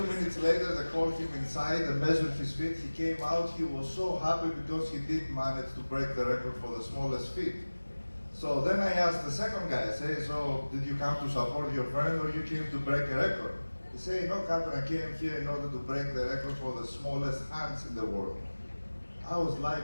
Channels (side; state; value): both; inverted; correlation -1.00